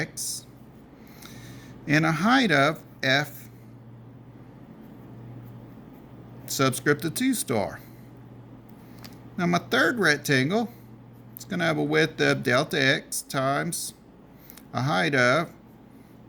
and a height of f subscript of 2 star. Now my third rectangle, it's going to have a width of delta x times a height of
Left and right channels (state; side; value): identical; both; correlation 1.00